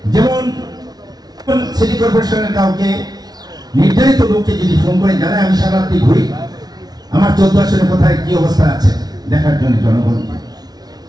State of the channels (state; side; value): late; left; 0.19 ms